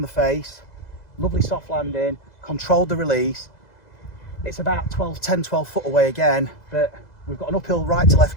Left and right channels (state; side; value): late; right; 2.0 ms